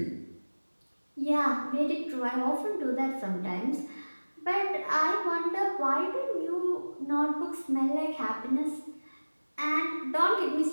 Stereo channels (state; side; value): inverted; both; correlation -1.00